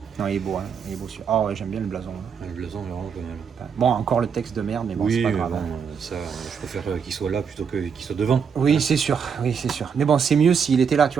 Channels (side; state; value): left; quieter; 6.7 dB